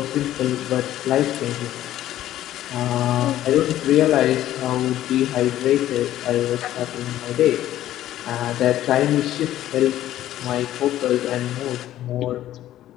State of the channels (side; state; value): right; quieter; 13.2 dB